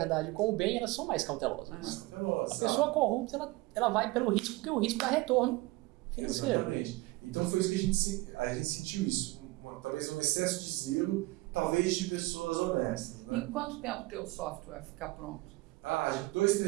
e com o bem, elas são mais cautelosas. A pessoa corrupta, ela vai pelo risco, porque o risco dá retorno financeiro. Exatamente. Então foi isso que a gente sentiu isso. Talvez um excesso de zelo, talvez de pessoas honestas. Né? Em quanto tempo o teu software vai ficar pronto? Já 2,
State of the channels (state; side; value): quieter; left; 21.5 dB